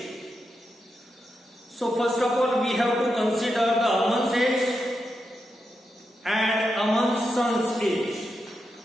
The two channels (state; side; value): normal; both; correlation 0.86